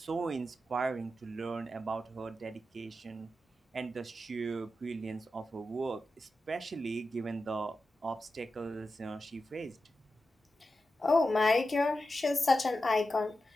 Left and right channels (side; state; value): both; normal; correlation 0.91